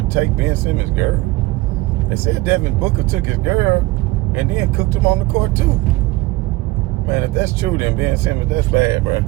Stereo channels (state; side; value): quieter; left; 20.1 dB